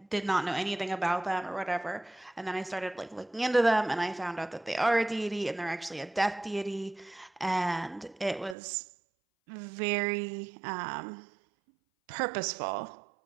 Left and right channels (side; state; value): left; drops out; at 8.6 s